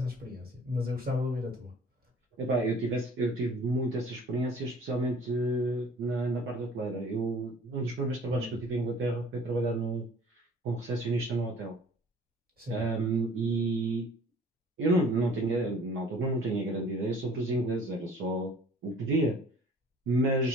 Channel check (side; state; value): both; normal; correlation 0.51